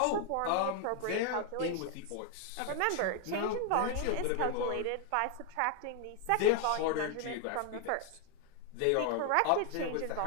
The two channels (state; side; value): different; both; correlation 0.00